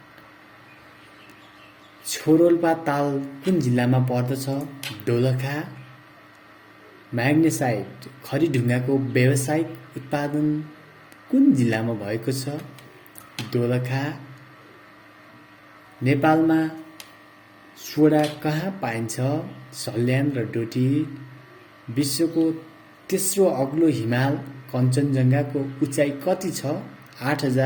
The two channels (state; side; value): identical; both; correlation 1.00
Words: छोरोल्पा ताल कुन जिल्लामा पर्दछ? दोलखा। म्याग्नेसाइट खरीढुङ्गाको व्यावसायिक उत्पादन कुन जिल्लामा भएको छ? दोलखा। नेपालमा सोडा कहाँ पाइन्छ? सल्यान र डोटी। विश्वको तेस्रो अग्लो हिमाल कञ्चनजङ्घाको उचाइ कति छ?